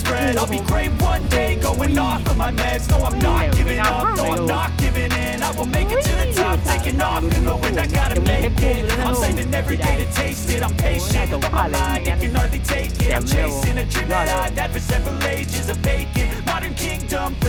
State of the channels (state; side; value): identical; both; correlation 1.00